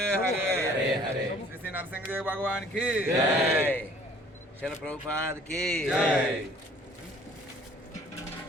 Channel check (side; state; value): both; normal; correlation 0.55